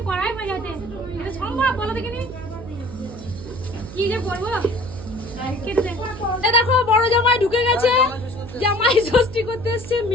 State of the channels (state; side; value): noise; right; hum, 13 dB below the sound